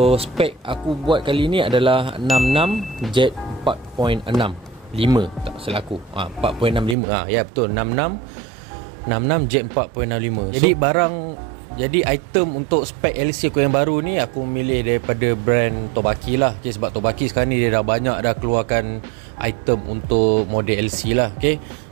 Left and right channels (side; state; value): left; drops out; at 7.0 s